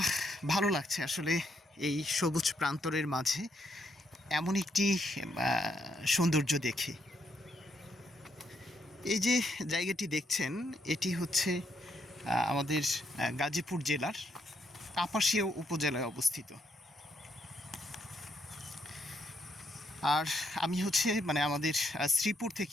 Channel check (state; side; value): normal; both; correlation 0.76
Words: ভালো লাগছে আসলে এই সবুজ প্রান্তরের মাঝে এমন একটি সৌন্দর্য দেখে। এই যে জায়গাটি দেখছেন, এটি হচ্ছে আমাদের গাজীপুর জেলার কাপাসিয়া উপজেলায় অবস্থিত। আর আমি হচ্ছে আমাদের শ্রীপুর